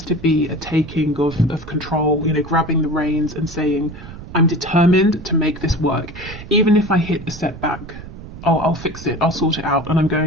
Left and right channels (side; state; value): right; noise; rumble, 14 dB below the sound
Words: to be a taking of control, you know, grabbing the reins and saying, I'm determined to make this work. Even if I hit a setback, I'll fix it, I'll sort it out, and I'm